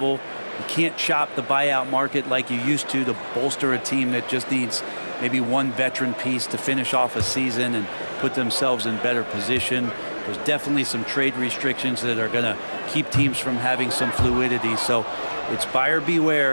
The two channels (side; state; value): both; inverted; correlation -1.00